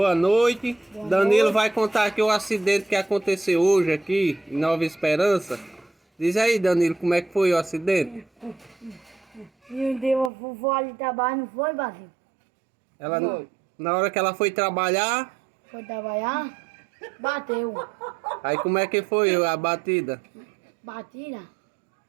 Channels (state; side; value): drops out; left; at 10.3 s